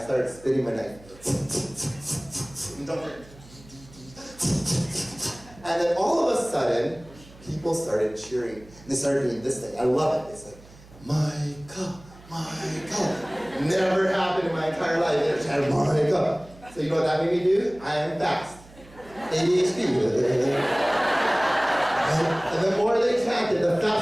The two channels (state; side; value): noise; right; hum, 22 dB below the sound